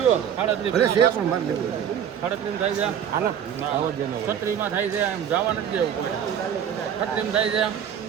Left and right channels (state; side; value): quieter; left; 8.9 dB